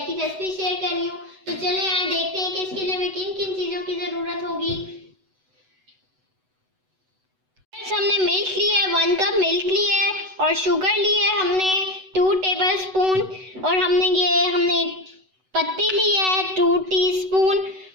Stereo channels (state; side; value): late; left; 8.0 ms